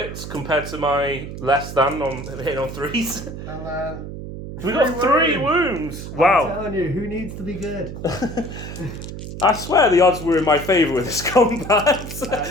compared to my less than on hitting on 3s. And then We got 3 wounds. Wow. I'm telling you, who needs to be good? I swear the odds were in my favour with this combat. You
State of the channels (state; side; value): noise; right; hum, 9 dB below the sound